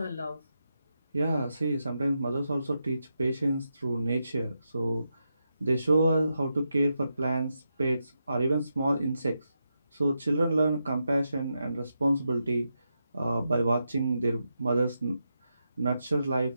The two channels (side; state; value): both; inverted; correlation -0.86